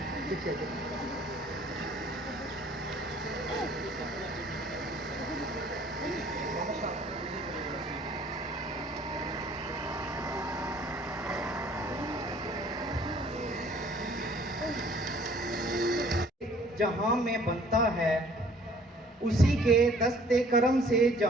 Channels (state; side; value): normal; both; correlation 0.55